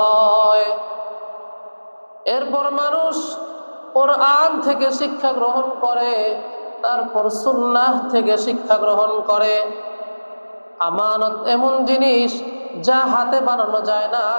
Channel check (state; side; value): inverted; both; correlation -1.00